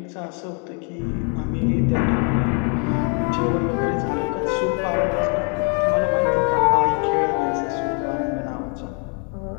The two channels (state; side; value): quieter; right; 38.6 dB